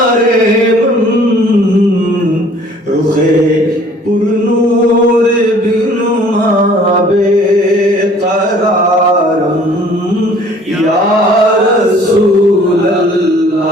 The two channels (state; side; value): normal; both; correlation 0.54